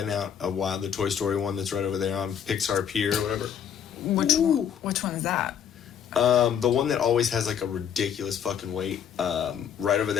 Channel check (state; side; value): quieter; right; 8.5 dB